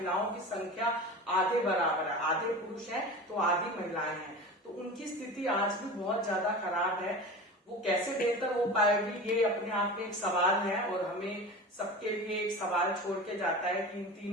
की संख्या आधे बराबर है। आधे पुरुष हैं तो आधी महिलाएं हैं। तो उनकी स्थिति आज भी बहुत ज्यादा खराब है। वो कैसे बेहतर हो पाएगी, ये अपने आप में एक सवाल है और हमें सबके लिए एक सवाल छोड़ के जाता है कि इन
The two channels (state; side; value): normal; both; correlation 0.32